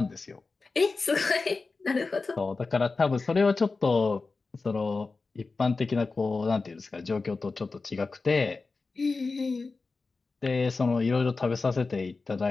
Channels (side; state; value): right; quieter; 4.0 dB